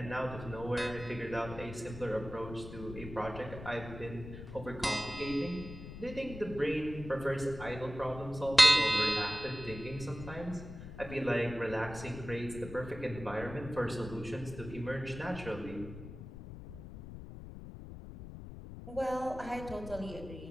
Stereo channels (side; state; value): left; noise; rumble, 12 dB below the sound